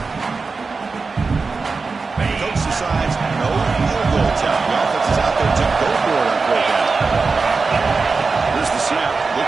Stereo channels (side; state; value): left; quieter; 4.4 dB